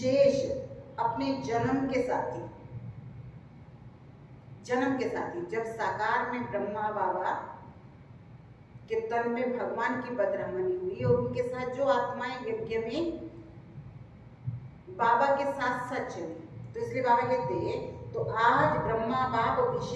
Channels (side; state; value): both; identical; correlation 1.00